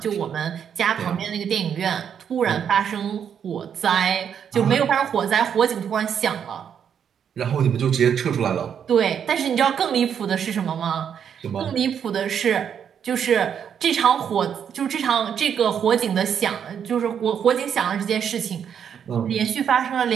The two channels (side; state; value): left; quieter; 8.1 dB